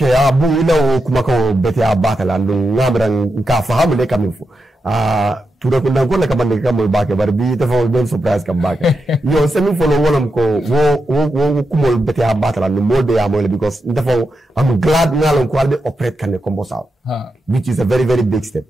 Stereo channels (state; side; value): normal; both; correlation 0.87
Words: bu ila kuma ko bete abata ndu ngamran ka fahamu le kamifu tura ko ndangol ka bande kam baake bar bi dafa ben surprise kam baake yo semi follow wolom ko wo kumol bete abata ndu molde ya mole because dafa I'm glad ngalon ko albe operate kan combo saw which is a very very big step